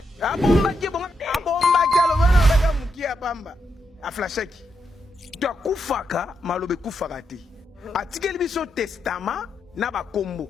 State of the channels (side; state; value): both; normal; correlation 0.82